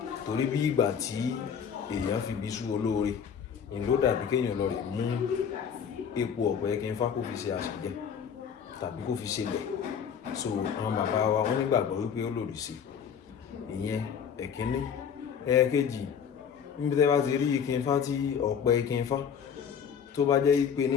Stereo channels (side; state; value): right; quieter; 7.5 dB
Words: torí bí ìgbà tí èèyàn fi bí sú olóore, ìlú dàbí kéèyàn lọ rẹ̀ mú epo ọ̀pẹ ìkìn Ifá kó fi ṣe àṣìjẹ tàbí kó fi ṣe lẹ̀. So àwọn bàbá wa wọ́n nígbàgbọ́ wípé ó lòdì sí ìyẹn ẹ̀kíní. Ẹ̀ẹ̀kejì, níbi tẹ́ bá ti rí ìkìn Ifá tí ọ̀pẹ ìkìn Ifá tó bá jẹ́ wípé ní